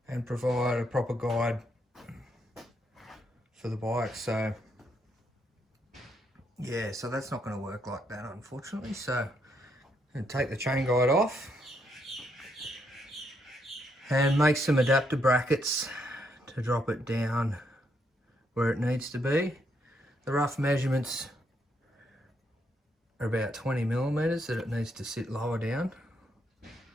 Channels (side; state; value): both; normal; correlation 0.76